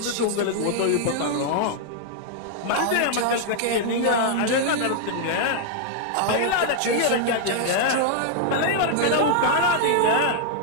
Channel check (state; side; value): different; both; correlation -0.01